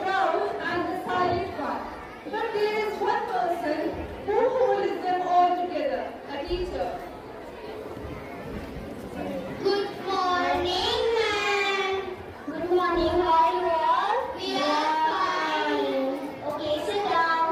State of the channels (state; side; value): identical; both; correlation 1.00